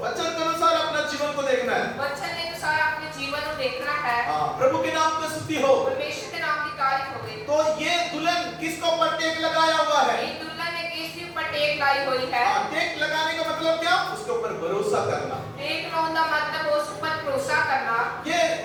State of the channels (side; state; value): both; identical; correlation 1.00